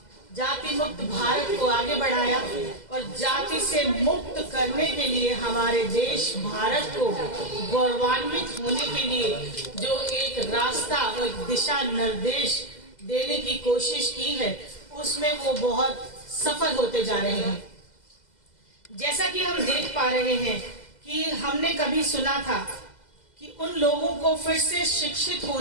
जाति मुक्त भारत को आगे बढ़ाया और जाति से मुक्त करने के लिए हमारे देश भारत को गौरवान्वित होने के लिए जो एक रास्ता और दिशा निर्देश देने की कोशिश की है, उसमें वो बहुत सफल होते जा रहे हैं। जैसा कि हम देख पा रहे हैं कि हमने कभी सुना था कि उन लोगों को फिर से शिक्षित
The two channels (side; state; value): right; late; 2.0 ms